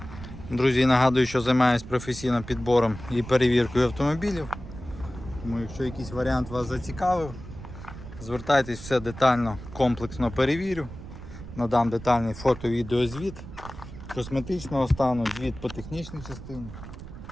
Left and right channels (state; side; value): noise; right; rumble, 13 dB below the sound